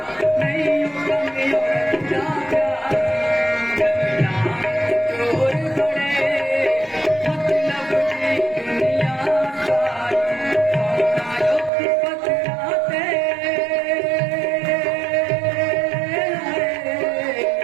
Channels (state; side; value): drops out; left; at 11.7 s